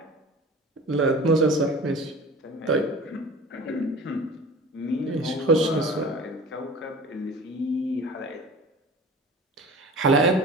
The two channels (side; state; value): both; normal; correlation 0.39